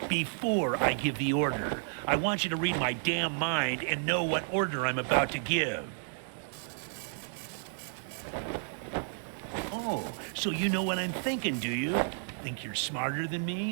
before I give the order. I want you to read my damn mind and know what order I'm about to give. Oh, so you know what I'm thinking, do you? Think you're smarter than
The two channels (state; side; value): silent; left; digital silence